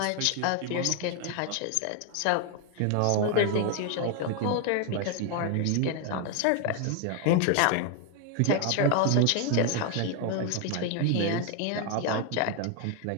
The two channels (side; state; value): both; different; correlation 0.01